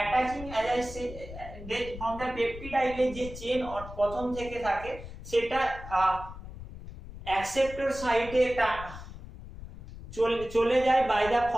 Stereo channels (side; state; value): left; noise; rumble, 13 dB below the sound